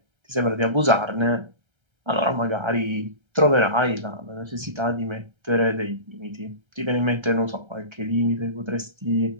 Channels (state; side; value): late; left; 1.3 ms